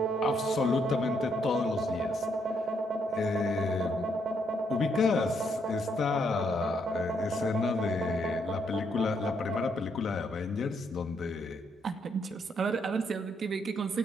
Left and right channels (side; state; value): both; normal; correlation 0.74